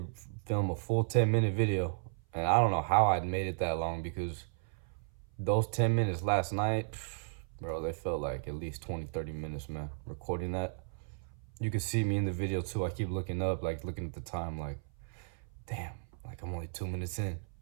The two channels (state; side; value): silent; left; 55 dB below the other